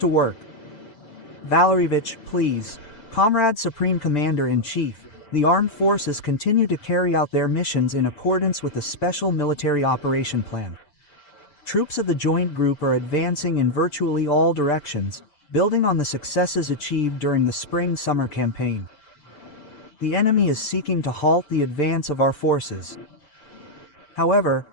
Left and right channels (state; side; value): late; right; 6.8 ms